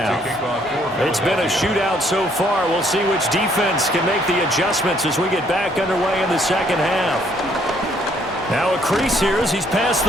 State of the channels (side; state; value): both; normal; correlation 0.66